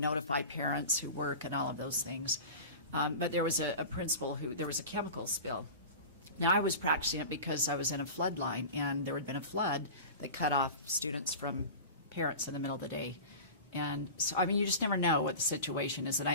parents who work and all of those things. But there was a principal there was a chemical spill. Now, I was practicing it because I was in a flood line, and there had been a flood that cut off students from parents in the middle of the day. And so, you just never know what the situation is. And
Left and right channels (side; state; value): both; inverted; correlation -0.33